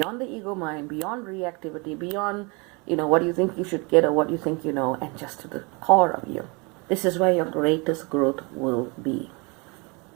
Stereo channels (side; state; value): left; quieter; 29.6 dB